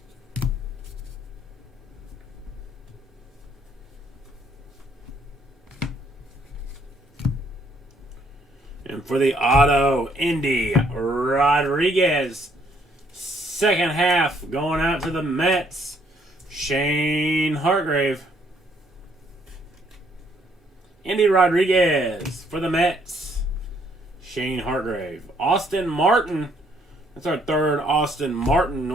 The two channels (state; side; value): normal; both; correlation 0.67